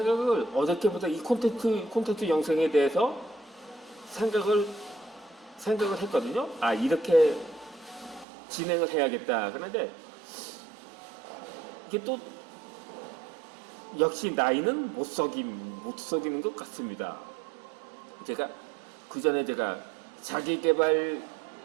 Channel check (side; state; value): left; drops out; at 8.2 s